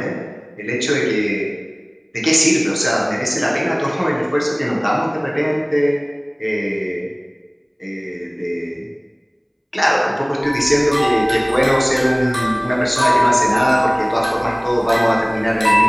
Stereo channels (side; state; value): both; identical; correlation 1.00